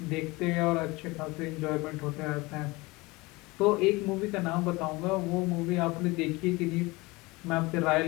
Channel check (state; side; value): quieter; right; 23.1 dB